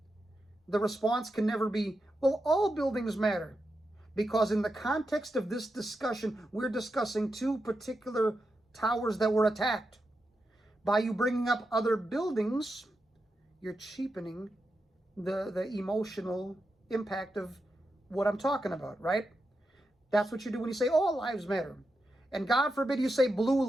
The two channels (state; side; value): normal; both; correlation 0.87